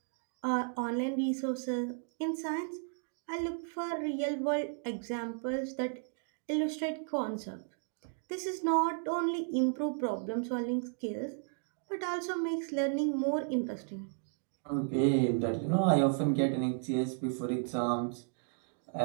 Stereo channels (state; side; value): silent; left; 55 dB below the other